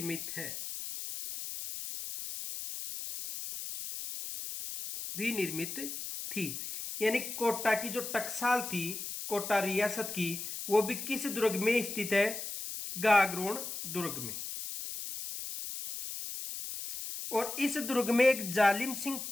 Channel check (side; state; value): left; noise; hiss, 7 dB below the sound